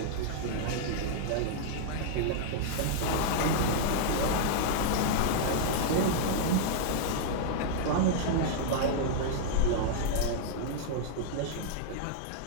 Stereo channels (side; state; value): both; different; correlation -0.01